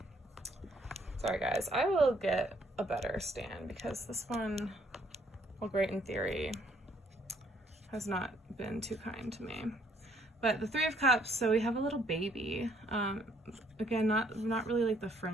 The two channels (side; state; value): both; normal; correlation 0.66